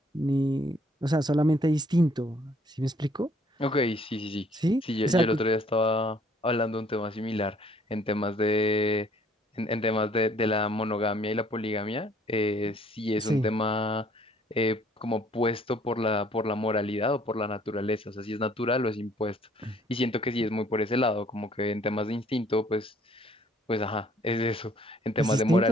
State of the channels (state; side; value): normal; both; correlation 0.61